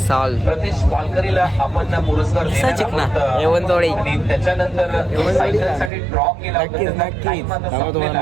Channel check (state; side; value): drops out; left; at 5.9 s